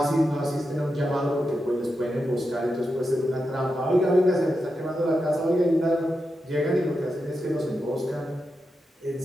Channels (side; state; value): both; normal; correlation 0.88